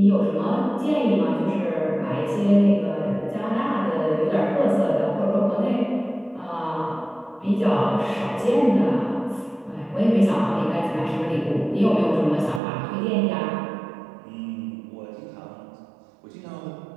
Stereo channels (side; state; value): left; drops out; at 12.6 s